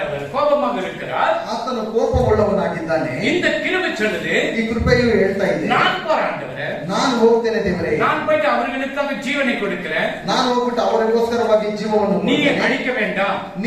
அவர் கோபமாக இருக்கிறார். ಆತನು ಕೋಪವುಳ್ಳವನಾಗಿದ್ದಾನೆ. இந்த கிருபை சொல்லுது, ಈ ಕೃಪೆಯು ಹೇಳ್ತಾ ಇದೆ, நான் போராண்டவரே, ನಾನು ಹೋಗ್ತೇನೆ ದೇವರೇ, நான் போயிட்டு அவர்களுக்காக ஜீவனை கொடுக்கிறேன், ನಾನು ಹೋಗ್ಬಿಟ್ಟು ಅವರಿಗೋಸ್ಕರವಾಗಿ ಜೀವವನ್ನು நீ ಕೊಡ್ತೇನೆ. அழிக்க வேண்டாம்.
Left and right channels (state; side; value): identical; both; correlation 1.00